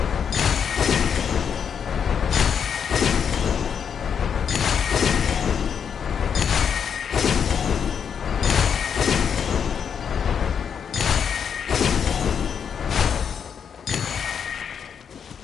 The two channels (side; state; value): right; quieter; 7.4 dB